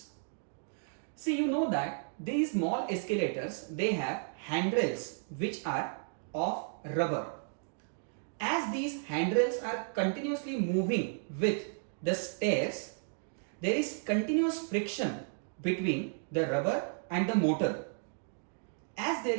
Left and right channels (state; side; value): silent; left; digital silence